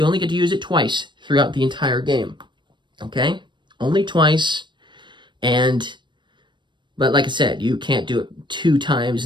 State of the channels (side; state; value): left; late; 0.22 ms